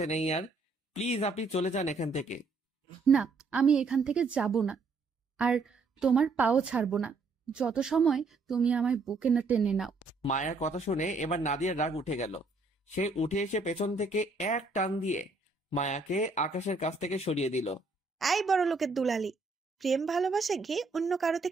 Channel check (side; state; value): left; quieter; 3.8 dB